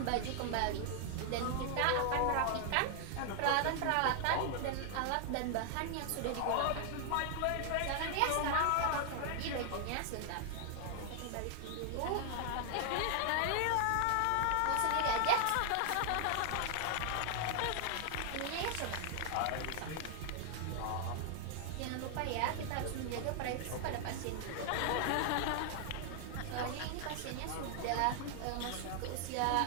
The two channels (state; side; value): different; both; correlation 0.00